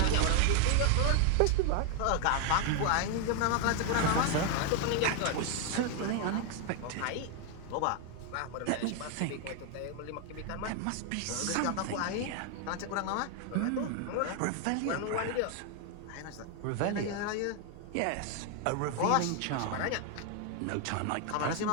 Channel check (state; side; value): different; both; correlation 0.01